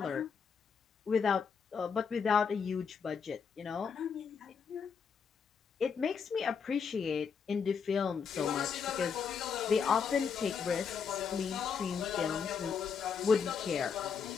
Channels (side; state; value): right; quieter; 6.2 dB